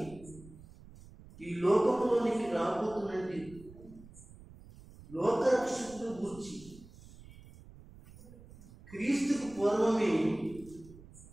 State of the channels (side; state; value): right; noise; rumble, 20 dB below the sound